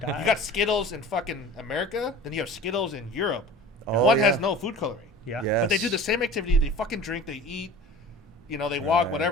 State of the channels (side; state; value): both; normal; correlation 0.40